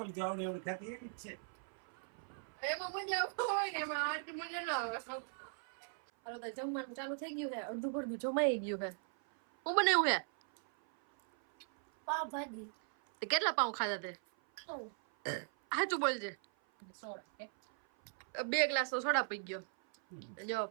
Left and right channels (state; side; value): silent; left; 52 dB below the other